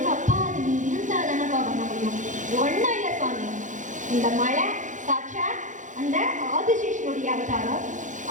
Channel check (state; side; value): late; left; 0.36 ms